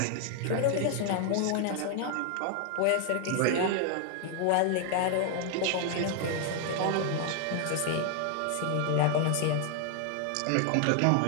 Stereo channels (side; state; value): both; different; correlation 0.00